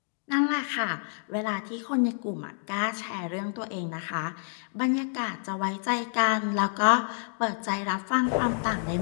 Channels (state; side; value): silent; right; digital silence